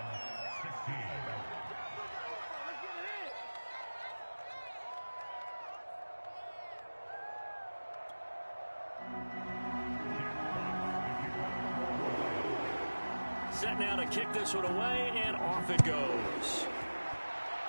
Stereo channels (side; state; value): both; inverted; correlation -1.00